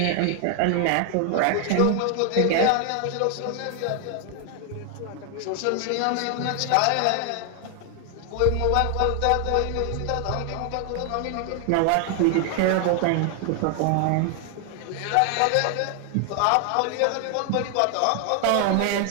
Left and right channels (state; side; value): different; both; correlation 0.00